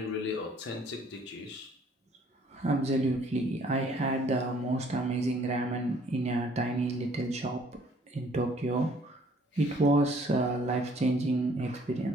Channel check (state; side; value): normal; both; correlation 0.59